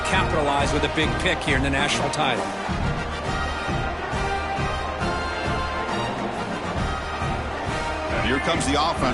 capitalize with a big pick here in the national title. And here comes the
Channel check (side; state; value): both; identical; correlation 1.00